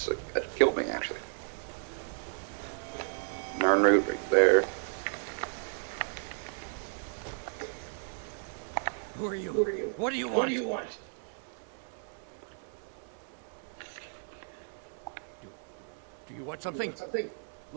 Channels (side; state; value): left; silent; 55 dB below the other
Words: killed me, actually. Narn route right there. Who are you? What do you want? Do you want something?